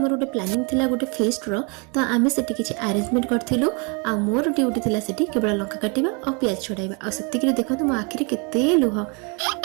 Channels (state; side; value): quieter; left; 33.1 dB